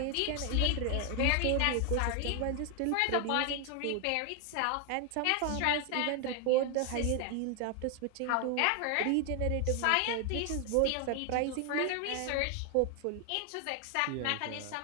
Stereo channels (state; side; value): different; both; correlation 0.01